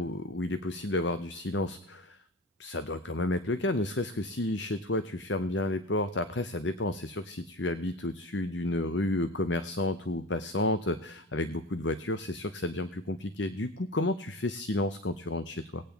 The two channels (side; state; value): both; normal; correlation 0.32